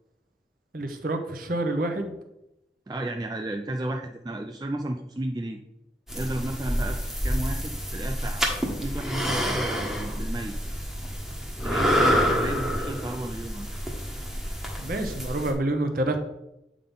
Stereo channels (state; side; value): normal; both; correlation 0.73